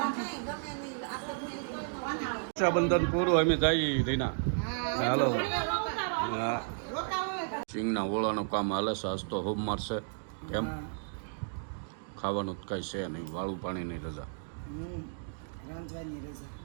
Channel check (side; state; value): left; silent; digital silence